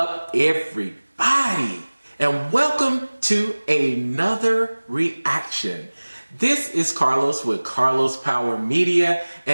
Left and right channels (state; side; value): inverted; both; correlation -1.00